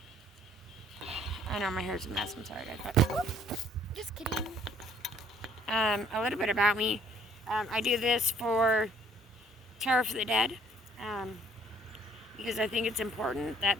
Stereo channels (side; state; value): both; normal; correlation 0.60